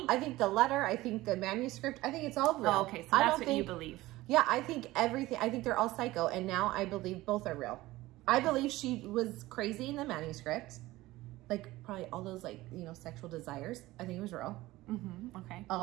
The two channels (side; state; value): left; quieter; 18.0 dB